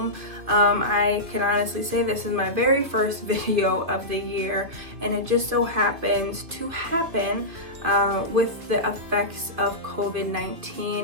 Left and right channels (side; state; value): left; late; 2.8 ms